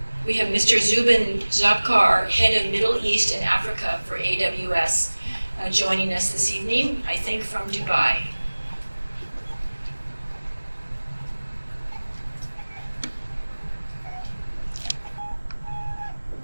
We have Mr. Zubin Zabkar, head of Middle East and Africa for AWS, joining us this evening, I think from Dubai.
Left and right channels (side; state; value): both; inverted; correlation -1.00